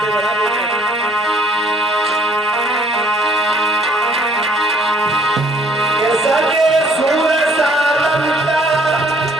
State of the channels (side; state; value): both; normal; correlation 0.61